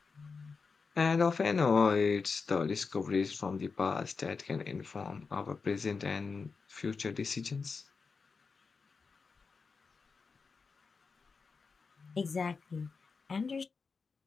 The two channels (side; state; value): right; quieter; 4.9 dB